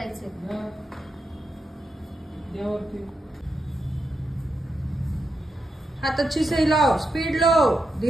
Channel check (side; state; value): both; normal; correlation 0.85